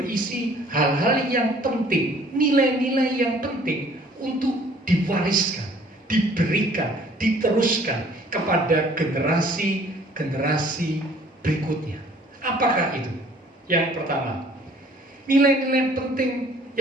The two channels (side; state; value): both; normal; correlation 0.55